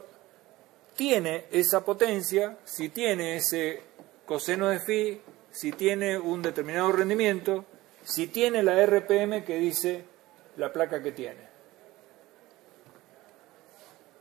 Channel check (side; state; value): left; quieter; 18.2 dB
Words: tiene esa potencia, si tiene ese coseno de phi, si tiene un determinado rendimiento, si tiene la RPM que dice la placa que tiene.